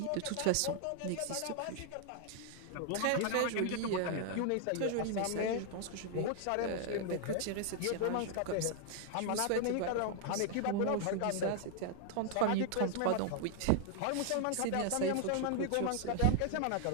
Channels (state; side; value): different; both; correlation 0.00